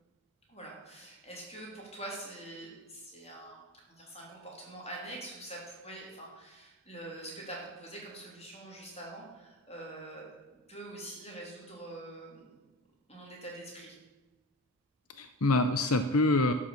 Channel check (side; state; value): both; normal; correlation 0.31